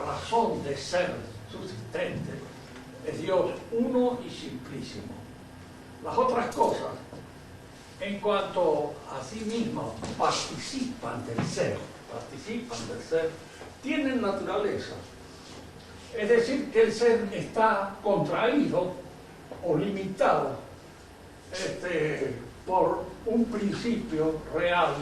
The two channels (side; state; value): both; identical; correlation 1.00